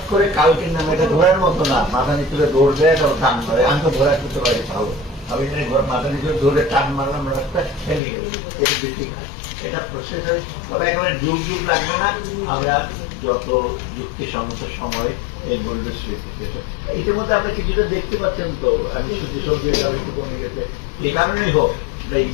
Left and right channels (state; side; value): drops out; right; at 8.0 s